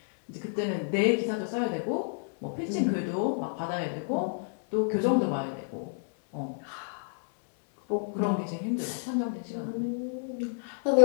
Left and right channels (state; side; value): silent; right; digital silence